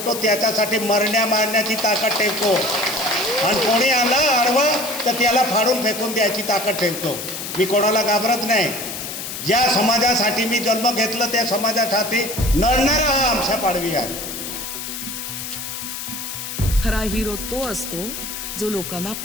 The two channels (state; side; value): noise; left; hiss, 7 dB below the sound